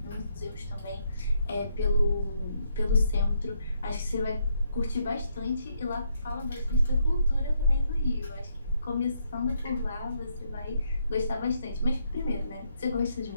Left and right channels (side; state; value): both; inverted; correlation -0.76